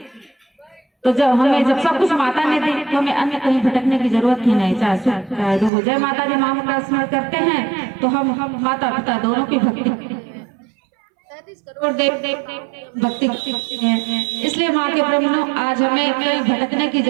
तो जब सब कुछ माता ने दी तो हमें अन्य कहीं भटकने की जरूरत ही नहीं, चाहे सुख चाहे दुख। जय माता दी माँ का स्मरण करते हैं तो हम माता पिता दोनों की भक्ति 33 करोड़ देव भक्ति करते हैं। इसलिए माँ के प्रेम आज हमें कहीं भटकने की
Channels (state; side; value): drops out; left; at 5.7 s